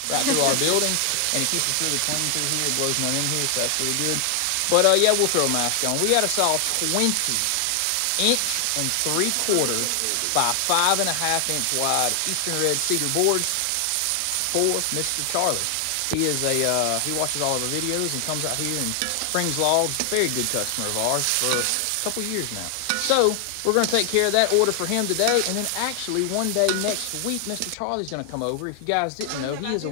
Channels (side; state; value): both; different; correlation 0.00